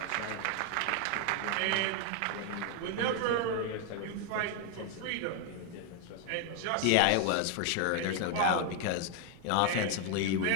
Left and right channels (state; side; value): different; both; correlation 0.00